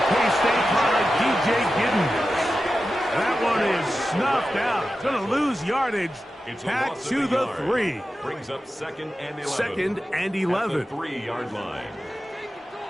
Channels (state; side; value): normal; both; correlation 0.92